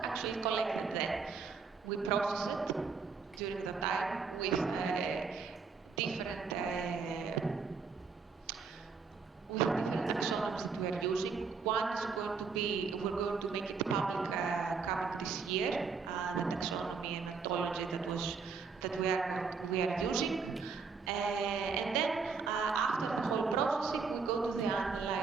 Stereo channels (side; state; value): left; quieter; 5.2 dB